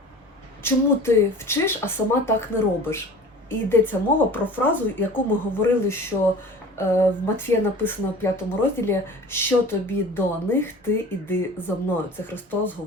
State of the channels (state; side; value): normal; both; correlation 0.41